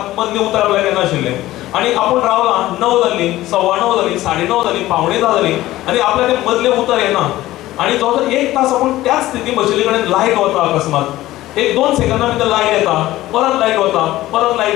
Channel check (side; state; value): right; quieter; 16.0 dB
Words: मदलें उतर आपल्याक येनाशिल्लें. आनी आपूण रावलां 9 जाली, 9:15 जाली, 9:30 जाली, 9:45 जाली आनी आपल्याक तें मदलें उतर येना. आनी जवळ 1 तास आपूण त्याच स्थितीन बशिल्ले कडेन लायट वता अकस्मात एक 2 सेकंदा भितर लायट येता, परत लायट वता, परत लायट